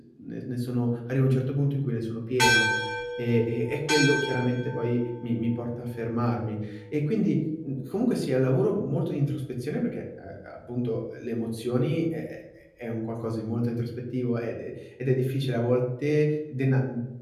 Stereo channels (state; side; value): identical; both; correlation 1.00